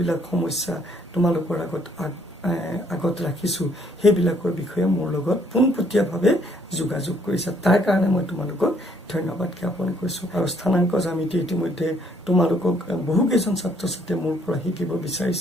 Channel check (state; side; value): normal; both; correlation 0.66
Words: সমস্যা তোমালোকৰ আগত ৰাখিছোঁ সেইবিলাকৰ বিষয়ে মোৰ লগত পোনপটীয়াভাৱে যোগাযোগ কৰিছে। তাৰ কাৰণে মই তোমালোকক ধন্যবাদ জ্ঞাপন কৰিছোঁ। আৰু স্থানাংক জ্যামিতি ইতিমধ্যে তোমালোকক বহুকেইজন ছাত্ৰ ছাত্ৰীয়ে মোৰ পৰা শিকিব